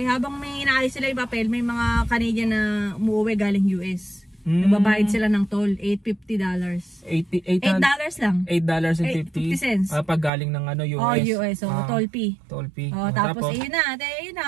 may inaayos sila yung papel, may mga Canadian na umuwi galing US. Nagbabayad sila ng toll, $850. $8 lang. $8.50. Pag galing ng US. Oh, US. So, toll fee. Toll fee. Tapos yun na.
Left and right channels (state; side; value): drops out; left; at 10.3 s